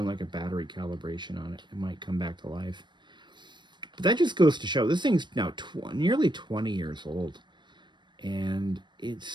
like a battery calibration on it, it might come back to life. But that just goes to show this thing's now nearly 20 years old, and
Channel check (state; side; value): late; left; 0.22 ms